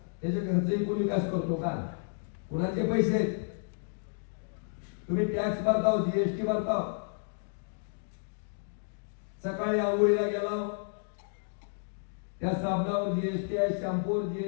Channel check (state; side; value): silent; right; digital silence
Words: त्याचे खर्च विकून विकास करतो का? कुणाचे पैसे आहेत? तुम्ही टॅक्स भरताव, जीएसटी भरताव. सकाळी आंघोळीला गेला, त्या साबणावर जीएसटी आहे, शॅम्पूवर